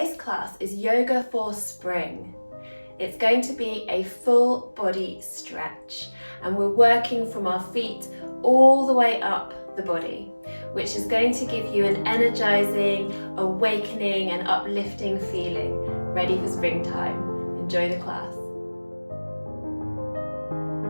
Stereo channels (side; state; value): both; inverted; correlation -1.00